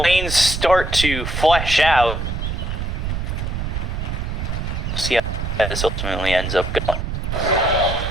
start to flesh out, we'll see how this ultimately ends up going.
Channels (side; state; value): right; noise; rumble, 3 dB below the sound